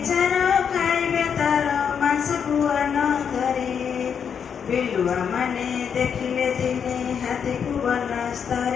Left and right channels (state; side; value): quieter; right; 7.3 dB